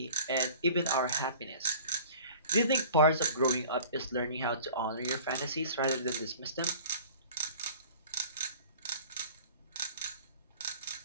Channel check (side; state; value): both; inverted; correlation -0.44